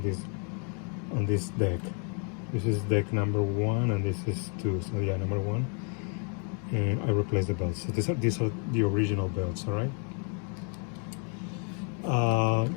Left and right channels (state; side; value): quieter; right; 40.0 dB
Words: this deck. This is deck number 1 and this is 2, so yeah, number 1, and I replaced the belts. So these are the original belts, all right?